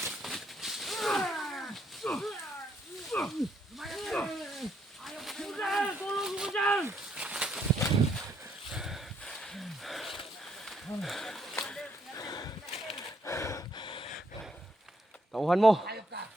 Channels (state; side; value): normal; both; correlation 0.72